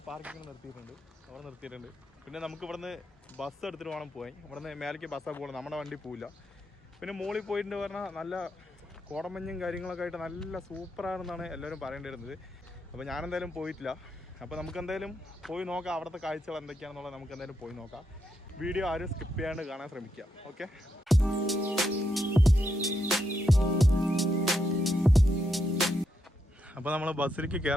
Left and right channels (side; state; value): both; normal; correlation 0.81